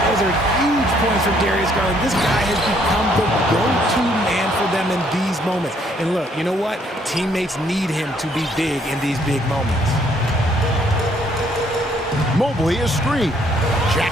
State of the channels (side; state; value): both; normal; correlation 0.67